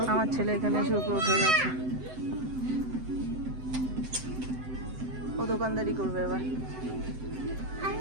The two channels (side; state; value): left; late; 7.8 ms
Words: আমার ছেলে এখানে এসে উপরে উঠে গেছে। ও দোকানদারি করবে এবার।